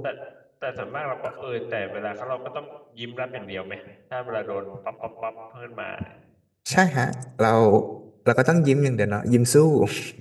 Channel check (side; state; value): both; identical; correlation 1.00